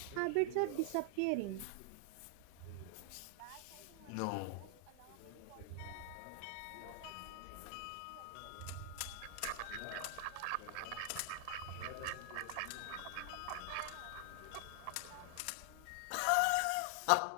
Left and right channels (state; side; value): different; both; correlation 0.00